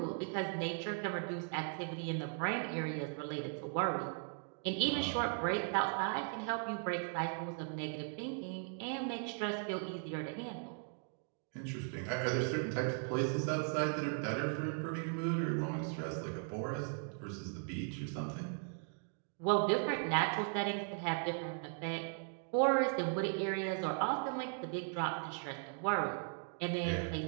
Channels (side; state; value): left; silent; 52 dB below the other